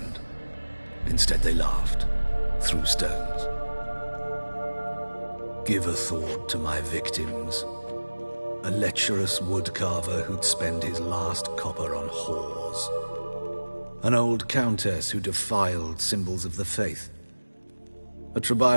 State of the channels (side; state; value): both; inverted; correlation -1.00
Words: Instead they laughed, threw stones. Give a thought to my victims. A lecherous woodcarver who'd spend his last copper on whores. An old countess who defiled symbols of the faith. A